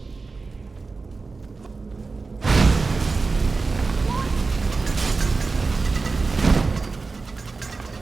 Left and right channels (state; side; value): quieter; left; 4.0 dB